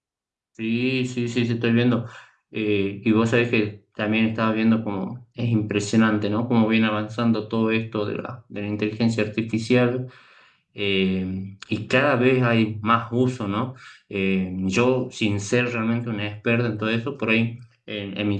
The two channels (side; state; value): both; identical; correlation 1.00